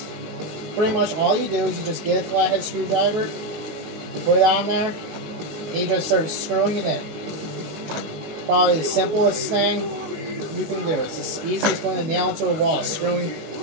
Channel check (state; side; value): late; left; 19 ms